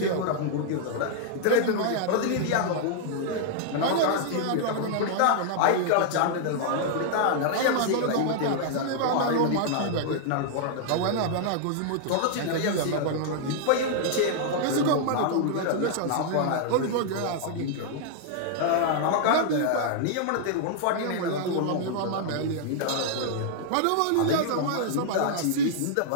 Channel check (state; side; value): different; both; correlation -0.01